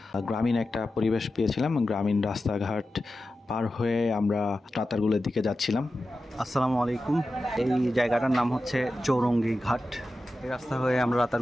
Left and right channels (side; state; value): both; normal; correlation 0.93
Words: গ্রামীণ একটা পরিবেশ পেয়েছিলাম। গ্রামীণ রাস্তাঘাট পার হয়ে আমরা রাতারগুলের দিকে যাচ্ছিলাম। আসসালামু আলাইকুম। এই জায়গাটার নাম হচ্ছে চৌরঙ্গি ঘাট। এই রাস্তা হয়ে আমরা